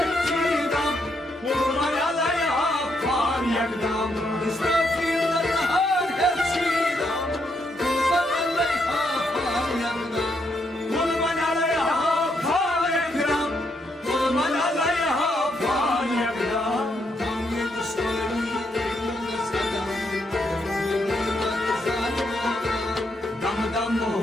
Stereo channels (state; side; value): normal; both; correlation 0.77